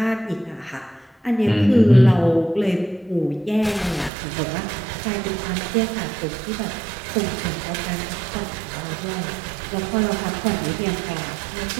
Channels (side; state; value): left; drops out; at 4.1 s